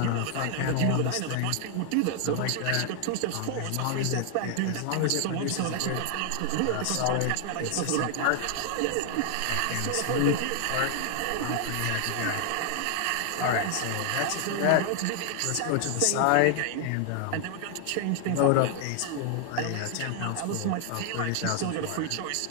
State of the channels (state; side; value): different; both; correlation 0.00